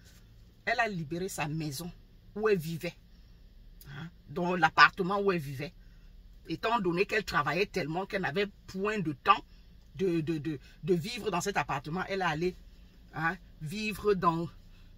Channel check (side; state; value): both; identical; correlation 1.00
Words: Elle a libéré sa maison où elle vivait. Hein? Dans l'appartement où elle vivait. Étant donné qu'elle travaillait tellement qu'elle n'avait point de temps de vivre dans cet appartement, elle est allée, hein, vivre dans